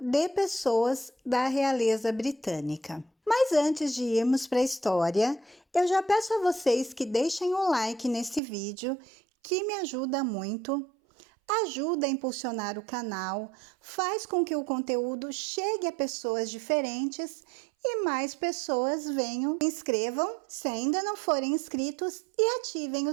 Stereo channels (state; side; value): drops out; left; at 8.4 s